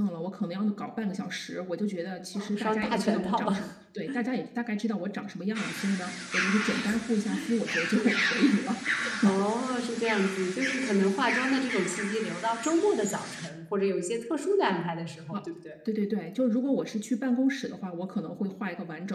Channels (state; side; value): identical; both; correlation 1.00